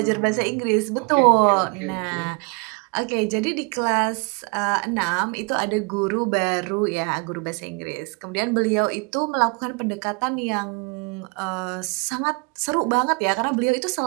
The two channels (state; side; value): quieter; left; 32.3 dB